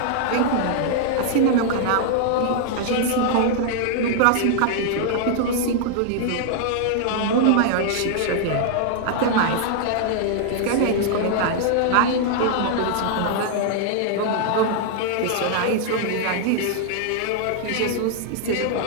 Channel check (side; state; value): both; different; correlation -0.01